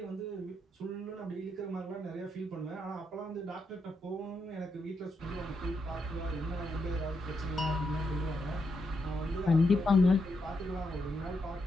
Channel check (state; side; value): normal; both; correlation 0.81